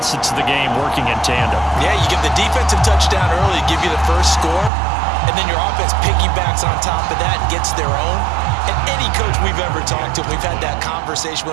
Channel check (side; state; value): left; drops out; at 4.7 s